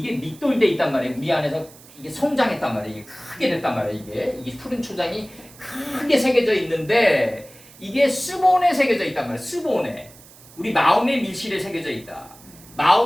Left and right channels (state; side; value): noise; right; hiss, 22 dB below the sound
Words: 밑돌돼 있단 말이에요. 우리 안에서 이게 성장했단 말이에요. 이게 크게 됐단 말이에요. 이게 푸른 초장이 크게 새겨져 있는데 이게 스본에 새겨져 있단 말이에요. 스본에 우리 마음의 밀실에 새겨져 있다.